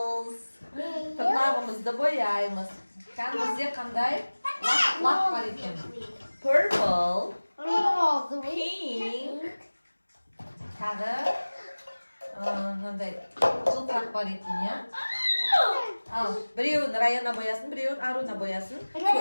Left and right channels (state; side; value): inverted; both; correlation -1.00